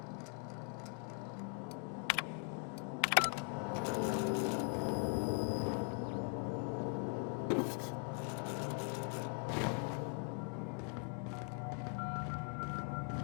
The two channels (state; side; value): quieter; right; 38.9 dB